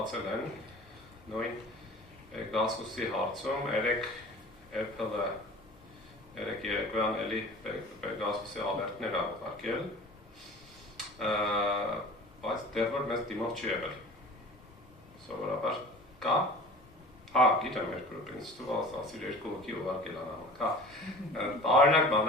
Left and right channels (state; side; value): normal; both; correlation 0.42